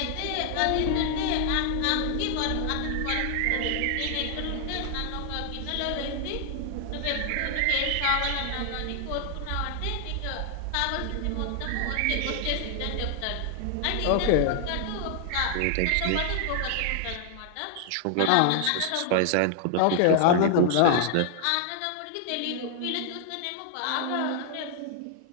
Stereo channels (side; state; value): both; different; correlation 0.00